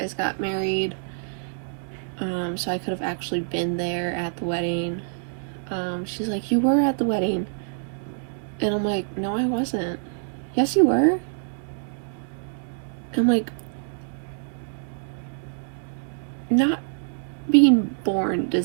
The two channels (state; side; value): silent; left; digital silence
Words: got married, so I could have actually been there at the wedding. She's like, you were at the wedding. And I'm like, no, I wasn't. Yes, you were. I'm like, not being born